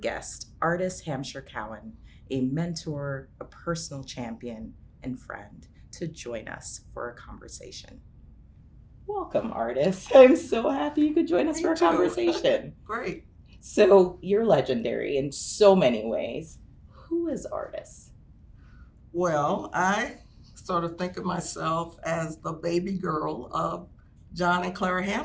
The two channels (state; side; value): identical; both; correlation 1.00